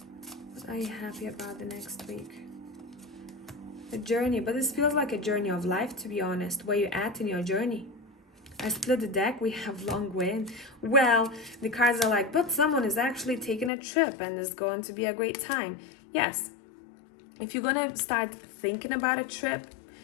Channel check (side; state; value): right; drops out; at 13.7 s